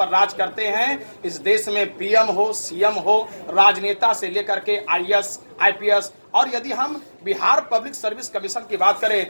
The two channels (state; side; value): inverted; both; correlation -1.00